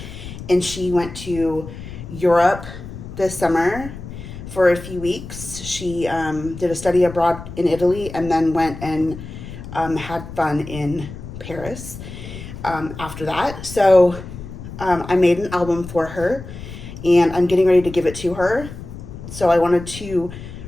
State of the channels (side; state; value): left; noise; rumble, 12 dB below the sound